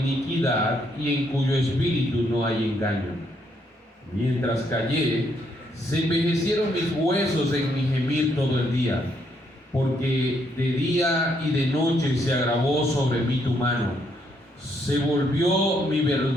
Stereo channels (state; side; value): normal; both; correlation 0.73